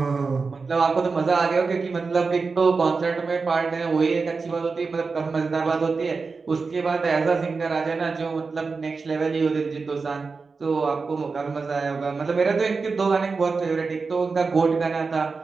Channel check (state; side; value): quieter; left; 4.5 dB